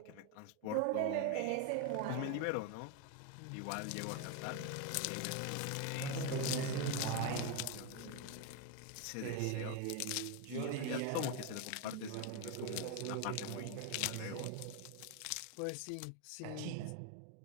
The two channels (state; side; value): different; both; correlation 0.02